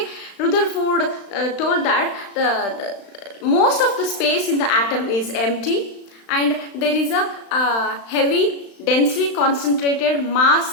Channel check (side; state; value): right; late; 35 ms